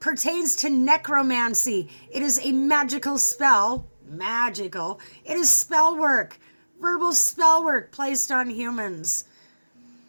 pertains to necromancy. It is a magical spell. Magical. It is spell work. Verbal spell work placed on humans.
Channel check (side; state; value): both; inverted; correlation -1.00